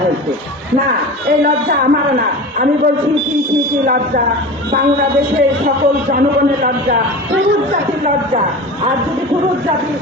হয়েছে। না, এই লজ্জা আমারও না। আমি বলছি কি লজ্জা, বাংলাদেশের সকল জনগণের লজ্জা, পুরুষ জাতির লজ্জা। আর যদি পুরুষ জাতি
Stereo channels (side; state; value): both; normal; correlation 0.32